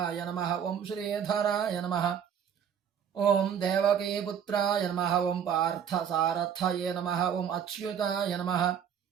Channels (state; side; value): quieter; left; 8.3 dB